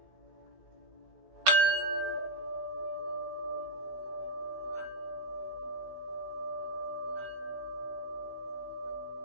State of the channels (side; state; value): left; late; 16 ms